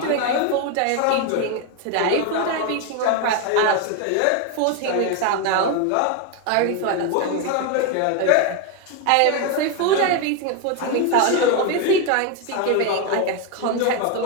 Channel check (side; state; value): both; different; correlation 0.02